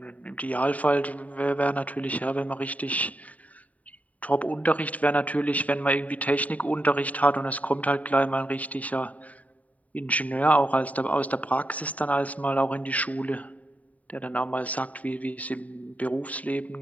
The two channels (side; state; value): right; late; 0.070 ms